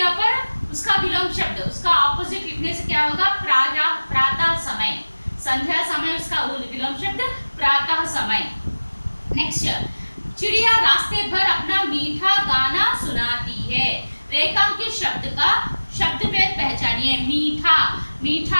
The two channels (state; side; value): inverted; both; correlation -1.00